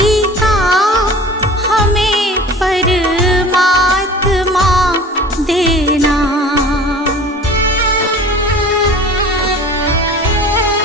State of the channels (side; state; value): both; normal; correlation 0.41